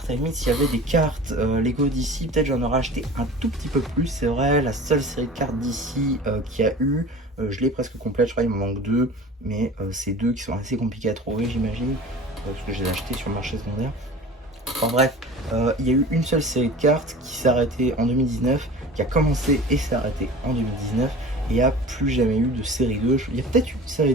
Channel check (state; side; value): normal; both; correlation 0.39